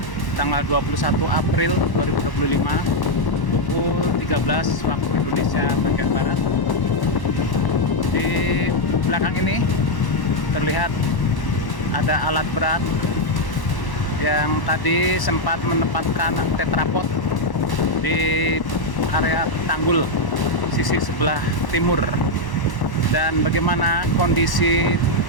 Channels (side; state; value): right; late; 1.1 ms